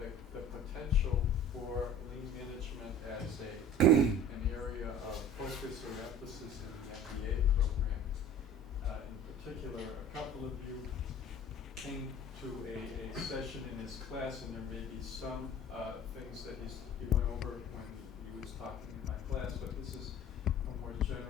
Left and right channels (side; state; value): both; normal; correlation 0.44